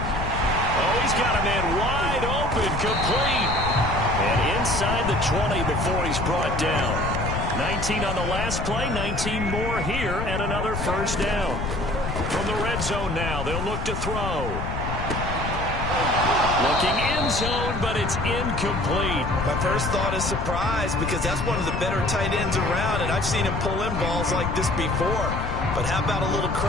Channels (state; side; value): noise; left; rumble, 4 dB below the sound